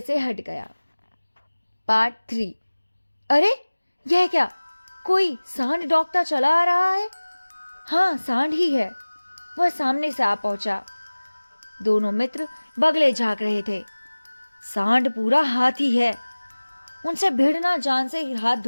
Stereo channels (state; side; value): inverted; both; correlation -1.00